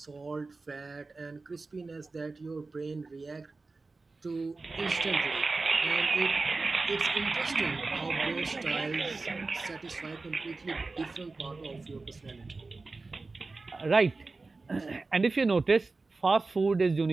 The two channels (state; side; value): quieter; left; 3.7 dB